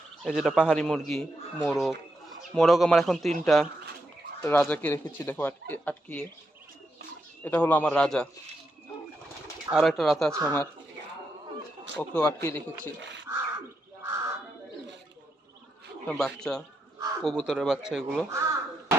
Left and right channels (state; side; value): normal; both; correlation 0.83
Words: এই যেটা পাহাড়ি মুরগি, মোরগ আমার এখন 3টা। রাজাকে রেখেছি দেখো আটকিয়ে। এটা হলো আমার রাজা। আরো একটা রাতা আছে আমার, ওকেও আটকিয়ে রেখেছি। বাচ্চা, কবুতরের বাচ্চা এগুলো।